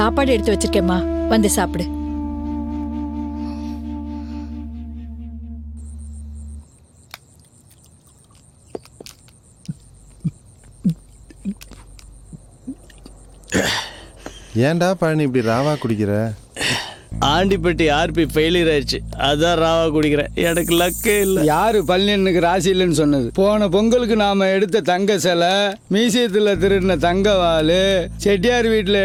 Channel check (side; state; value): both; identical; correlation 1.00